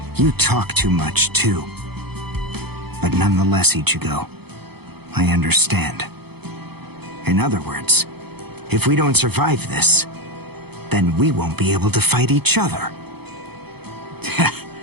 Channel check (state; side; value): late; left; 0.97 ms